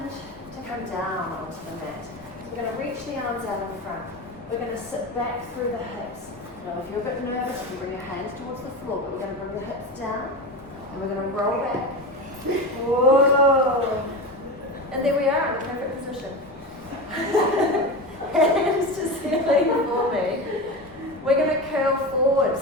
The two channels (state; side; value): noise; right; rumble, 24 dB below the sound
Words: to come down onto the mat. So we're going to reach the arms out in front. We're going to sit back through the hips. Now if you're a bit nervous, you can bring your hands towards the floor, but we're going to bring the hips down and we're going to roll back. Whoa! And there we are in the perfect position. Hands to ceiling for me. We're going to curl forward,